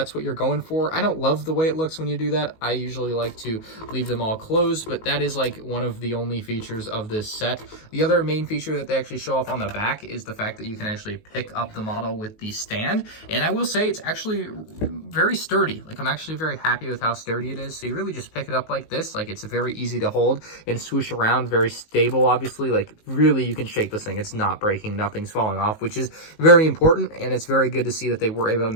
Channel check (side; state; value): right; late; 19 ms